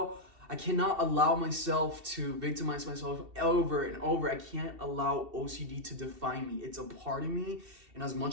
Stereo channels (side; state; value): left; late; 2.7 ms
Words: allow myself to victimize myself over and over. I can't allow OCD to define me. It's a part of me, and as